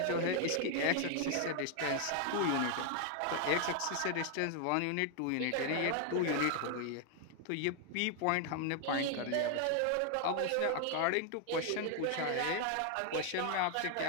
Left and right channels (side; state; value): both; different; correlation 0.00